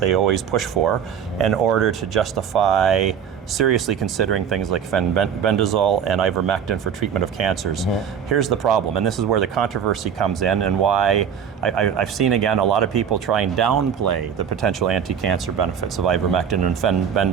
always push for in order to justify seriously considering things like fenbendazole and ivermectin for treatment of cancers. Here's the problem, and this is where the controversy comes in, and why I've seen again a lot of people try and downplay the potential anti-cancer benefits of ivermectin and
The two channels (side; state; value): left; quieter; 7.8 dB